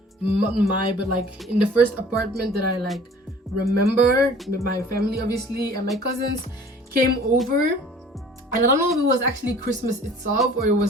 not my, but like in the first apartment that I like remember with my family obviously, and my cousins came over. And I don't know if it was actually Christmas itself or it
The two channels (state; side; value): normal; both; correlation 0.49